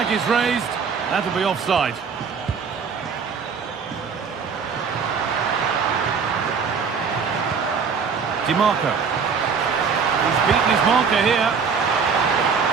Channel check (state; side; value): quieter; left; 5.9 dB